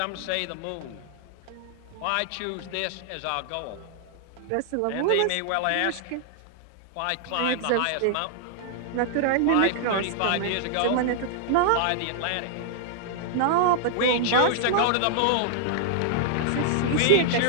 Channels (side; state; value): both; different; correlation -0.01